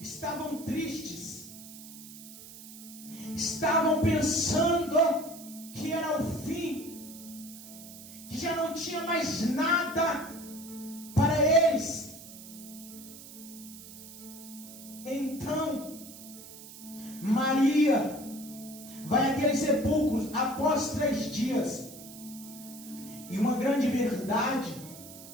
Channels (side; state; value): right; noise; hiss, 16 dB below the sound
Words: tristes, estavam pensando que era o fim, que já não tinha mais nada para eles. Então Maria vai àquele sepulcro após 3 dias. E uma grande verdade